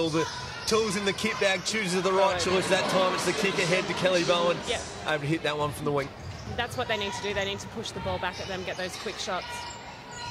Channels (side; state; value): both; identical; correlation 1.00